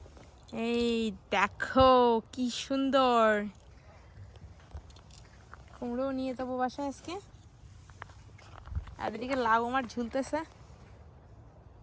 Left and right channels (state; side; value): identical; both; correlation 1.00